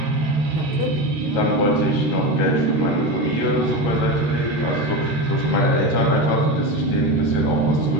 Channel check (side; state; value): left; late; 13 ms